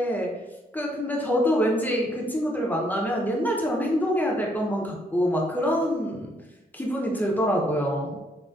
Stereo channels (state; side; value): normal; both; correlation 0.70